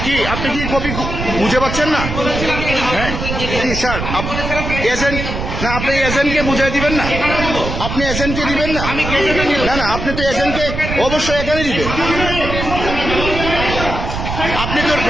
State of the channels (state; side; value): noise; right; rumble, 5 dB below the sound